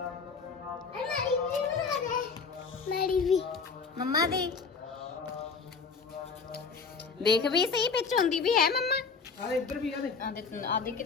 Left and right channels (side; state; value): right; quieter; 5.1 dB